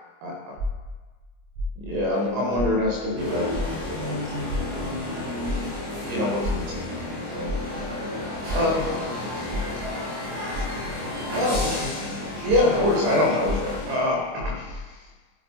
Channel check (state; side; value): late; left; 25 ms